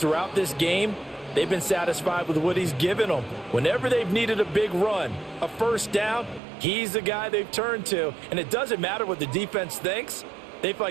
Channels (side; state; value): left; drops out; at 6.4 s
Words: this game, they've been satisfied with what he's given them. Whenever they've needed a big run, a 1st down, he's the guy they've turned to, and it doesn't matter what the defense thinks. They feel